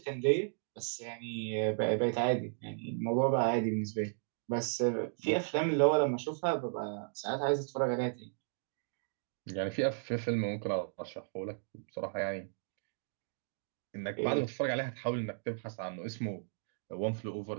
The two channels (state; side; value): silent; left; digital silence